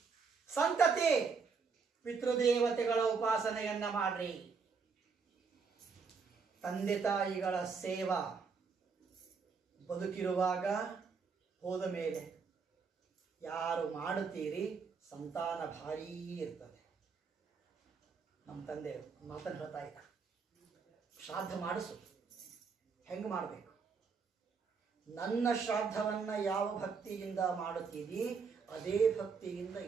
ಸಂತತಿ, ಪಿತೃದೇವತೆಗಳ ಉಪಾಸನೆಯನ್ನ ಮಾಡ್ರಿ. ತಂದೆ ತಾಯಿಗಳ ಸೇವಾ ಬದುಕಿರುವಾಗ, ಹೋದ ಮೇಲೆ ಯಾರು ಮಾಡುತ್ತೀರಿ ಸಂತಾನ ಭಾರೀ ಇರ್ತದೆ. ನಮ್ಮ ತಂದೆ ಮಾತನ್ನು ಹೇಳ್ತಾ ಇದ್ದ, ಶ್ರಾದ್ದ ಮಾಡಿಸು. ಹೆಂಗೆ ಮಾಡಬೇಕು? ನನ್ನ ಶ್ರಾದ್ದವನ್ನ ಯಾವ ಭಕ್ತಿಯಿಂದ ಮಾಡುತ್ತೀರಿ ಅದೇ ಭಕ್ತಿಯಿಂದ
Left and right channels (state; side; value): quieter; left; 5.3 dB